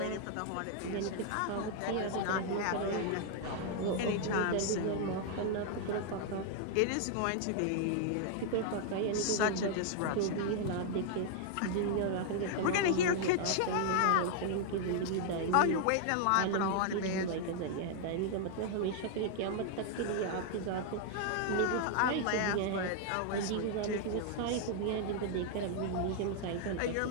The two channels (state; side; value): different; both; correlation 0.00